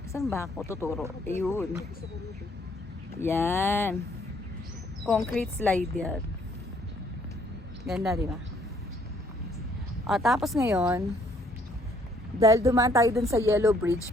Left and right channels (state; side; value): normal; both; correlation 0.65